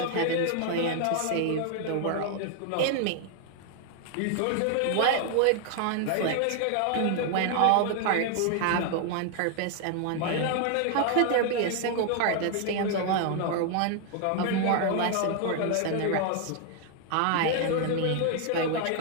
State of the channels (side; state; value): both; different; correlation 0.00